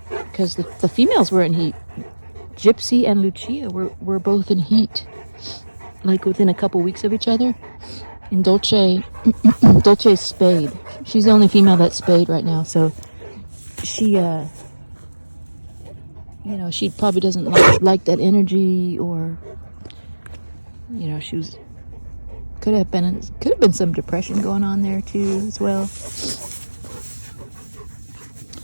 because the females were in heat. Gypsy and Lucia were both in heat, like within a couple weeks of each other. And Dolce's spayed. She's the only female that's spayed right now, so she, you know, she probably doesn't like that energy, or, you know, could have been some depression going on there too as well.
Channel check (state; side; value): inverted; both; correlation -1.00